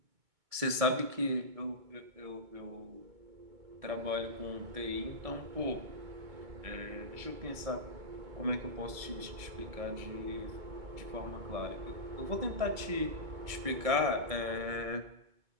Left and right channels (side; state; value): left; late; 2.2 ms